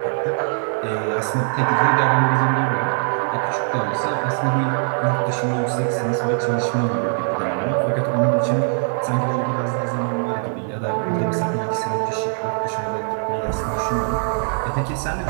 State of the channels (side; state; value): left; silent; 64 dB below the other